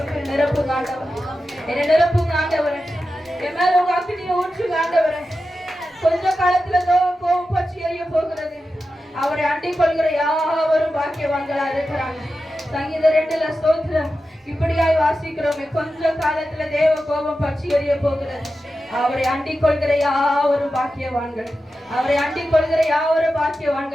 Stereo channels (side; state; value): both; normal; correlation 0.92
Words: நிரப்புங்க ஆண்டவரே. என்னை நிரப்புங்க ஆண்டவரே. என் மேல உங்க அக்கினியை ஊற்றுங்க ஆண்டவரே. கொஞ்ச காலத்துல கோபம் பற்றி எரிய போகிறது. அவரை அண்டிக் கொள்கிற யாவரும் பாக்கியவான்களா இருக்கிறாங்க. சங்கீதம் 2ல ஸ்தோத்திரம் இப்படியாய் வாசிக்கிறோமே, கொஞ்ச காலத்துல தேவ கோபம் பற்றி எரிய போகிறது. அவரை அண்டிக் கொள்கிற யாவரும் பாக்கியவான்கள். அவரை அண்டிக் கொள்கிற யாவரும்